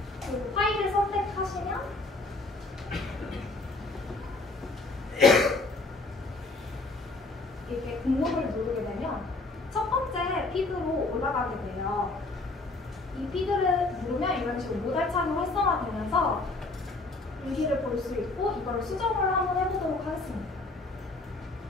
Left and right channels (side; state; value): right; quieter; 3.2 dB